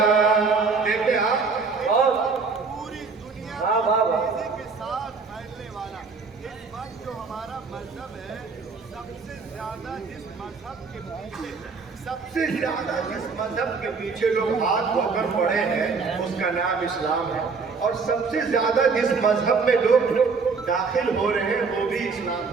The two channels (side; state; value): left; quieter; 4.8 dB